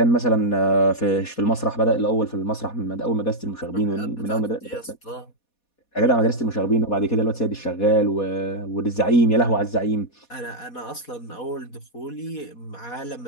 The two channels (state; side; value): late; right; 4.2 ms